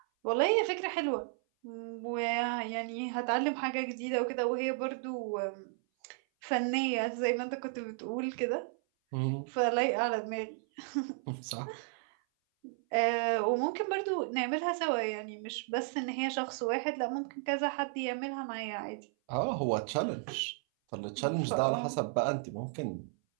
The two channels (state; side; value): silent; left; 55 dB below the other